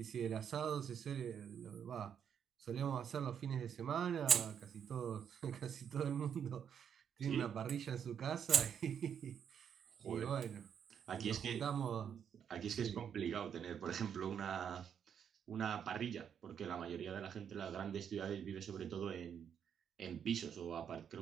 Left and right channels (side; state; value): left; quieter; 8.1 dB